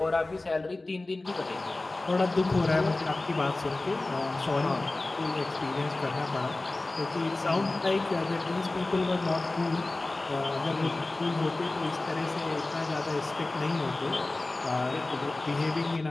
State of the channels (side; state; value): right; quieter; 3.0 dB